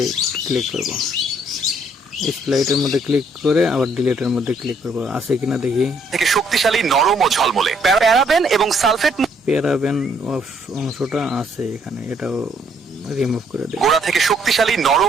ক্লিক করব। স্প্লাইটের মধ্যে ক্লিক করে আবার ডিলিটের মধ্যে ক্লিক করব, আছে কিনা দেখি। থেকে শক্তিশালী, নরম ও ঝলমলে। প্যারাবেন এবং সালফেট প্যারাবেন অংশটা আছে এখানে, এটাও রিমুভ করে দেব। গোড়া থেকে শক্তিশালী,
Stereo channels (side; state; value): both; normal; correlation 0.67